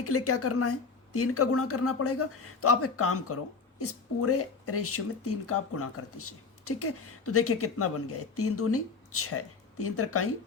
के लिए क्या करना है, 3 का गुणा करना पड़ेगा। तो आप एक काम करो, इस पूरे रेशियो में 3 का आप गुणा कर दीजिए, ठीक है। तो देखिए कितना बन गया है, 3 दूनी 6, 3 त्रिकाई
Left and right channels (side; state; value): right; quieter; 4.7 dB